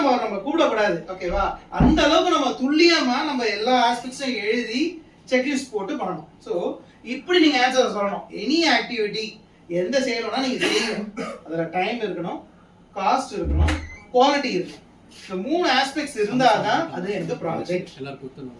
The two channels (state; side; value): identical; both; correlation 1.00